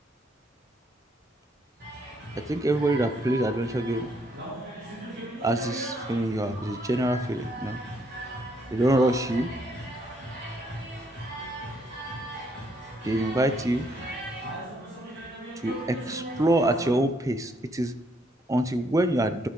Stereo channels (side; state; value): both; normal; correlation 0.70